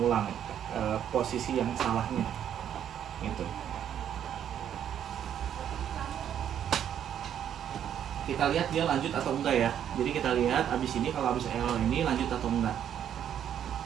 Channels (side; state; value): left; quieter; 9.6 dB